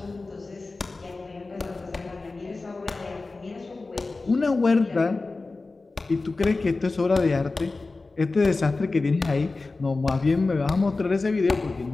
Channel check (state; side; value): quieter; right; 3.6 dB